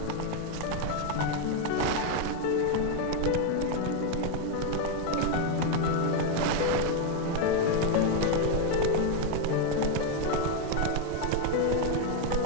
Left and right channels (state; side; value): different; both; correlation 0.01